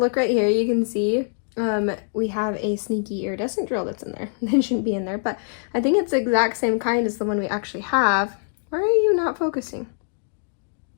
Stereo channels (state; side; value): silent; right; 61 dB below the other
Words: right here, you can see we have a sneaky iridescent drill that's in there. It shouldn't be in there, but I think it's the exact same kind as the one we actually have. Why are you not focusing?